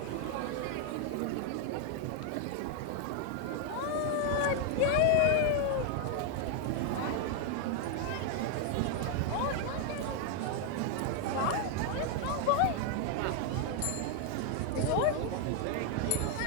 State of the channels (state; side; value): different; both; correlation 0.00